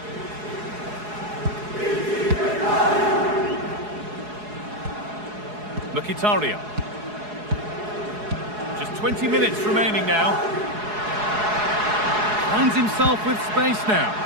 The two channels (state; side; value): late; left; 4.7 ms